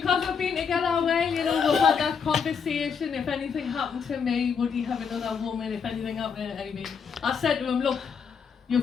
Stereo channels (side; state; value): right; quieter; 6.4 dB